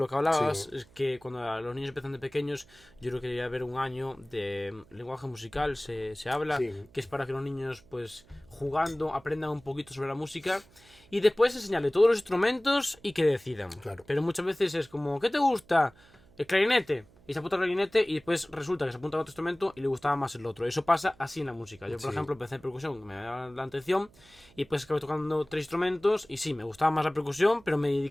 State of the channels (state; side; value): noise; right; hum, 27 dB below the sound